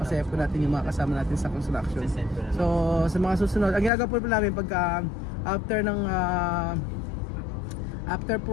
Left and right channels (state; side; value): drops out; right; at 3.9 s